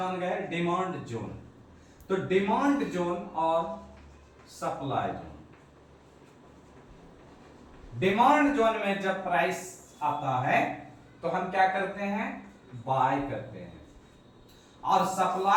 गए डिमांड जोन। तो डिमांड जोन और सप्लाई जोन, डिमांड जोन में जब प्राइस आता है तो हम क्या करते हैं, बाय करते हैं, और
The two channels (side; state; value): both; identical; correlation 1.00